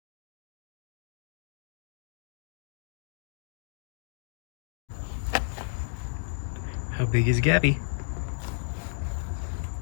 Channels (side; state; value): right; silent; digital silence